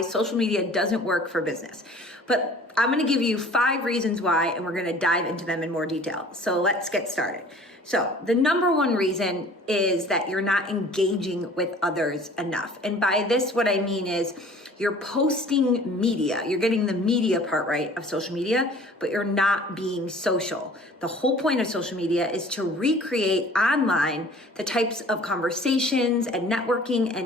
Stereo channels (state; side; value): normal; both; correlation 0.48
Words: social media doesn't work for business. But I'm going to give you 5 reasons why, and we're going to dive into them in more detail. So let's get started. So the number one reason is that you're not engaging with others enough. And by this, what I mean is you're posting media. You're getting the media part right of social media, but you're not being social. The whole point of social media is to recreate online the types of conversations and networking